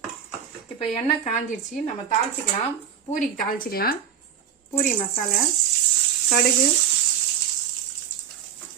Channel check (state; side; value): quieter; left; 8.5 dB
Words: இப்போ எண்ணெய் காஞ்சிருச்சு, நம்ம தாளிச்சிக்கலாம். பூரிக்கு தாளிச்சிக்கலாம். பூரி மசாலா, கடுகு,